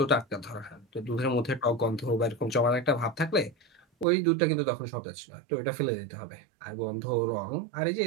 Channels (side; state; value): left; drops out; at 4.0 s